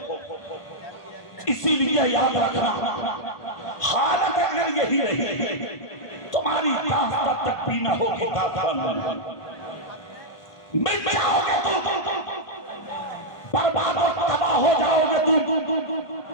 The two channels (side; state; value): right; late; 1.5 ms